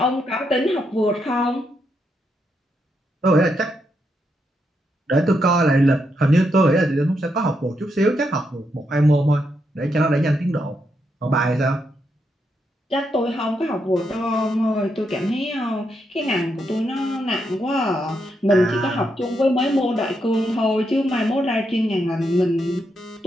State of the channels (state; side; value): normal; both; correlation 0.81